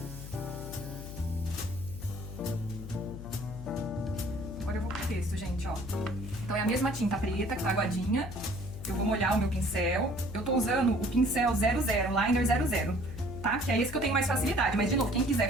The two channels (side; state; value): left; noise; hum, 10 dB below the sound